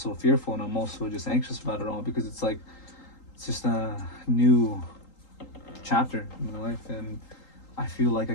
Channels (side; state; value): right; late; 3.8 ms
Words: fearful, and I'm also just anxious about it all because it's like it's just a new chapter in my life, and I feel like I